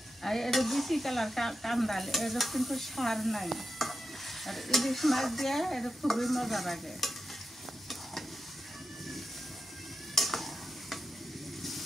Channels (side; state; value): both; normal; correlation 0.89